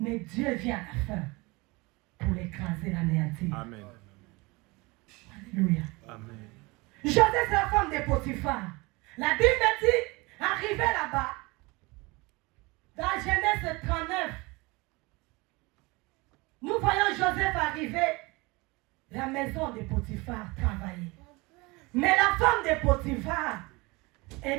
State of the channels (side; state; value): left; quieter; 24.7 dB